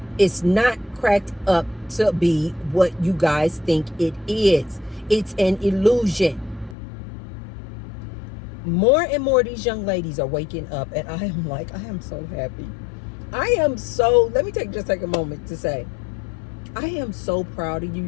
It's not cracked up to be what you guys think it is. It's an illusion. More and more of these young ladies are waking up, and I am so happy. Let me just take a moment to say, I am so proud of you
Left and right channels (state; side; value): drops out; right; at 6.8 s